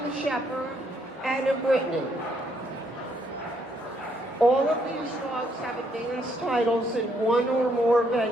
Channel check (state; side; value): normal; both; correlation 0.72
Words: shepherd, and a Brittany. All of these dogs have advanced titles in one or more